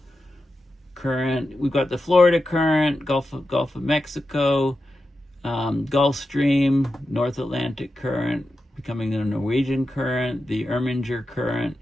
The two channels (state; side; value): normal; both; correlation 0.90